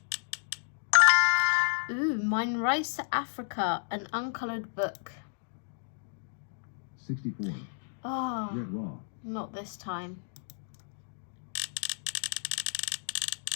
Ooh, Mine Rice Africa, an uncoloured book. 64. Oh, Red raw. not this time.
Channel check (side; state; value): right; silent; digital silence